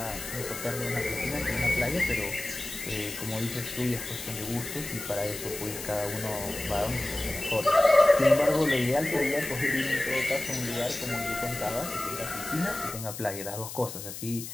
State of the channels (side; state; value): left; noise; hiss, 9 dB below the sound